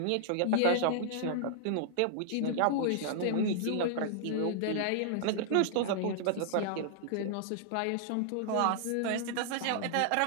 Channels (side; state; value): both; different; correlation -0.01